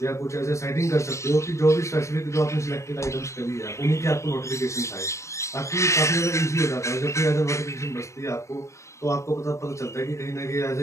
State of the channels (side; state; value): right; late; 0.14 ms